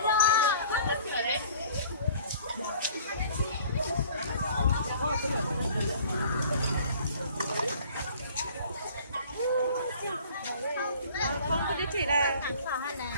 Không có địa chỉ là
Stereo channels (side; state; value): both; inverted; correlation -0.50